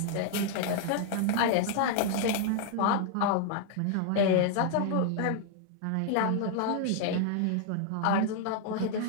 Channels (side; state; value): both; different; correlation 0.00